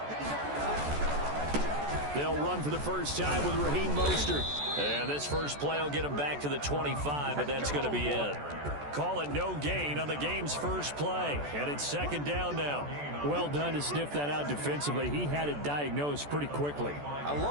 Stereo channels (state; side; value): late; left; 14 ms